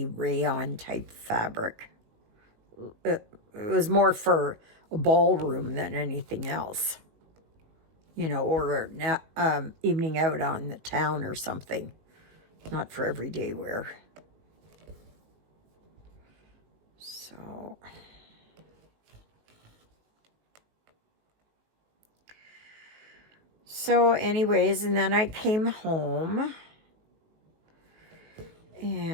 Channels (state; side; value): late; left; 19 ms